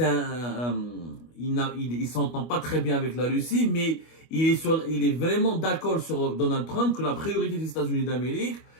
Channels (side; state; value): right; late; 25 ms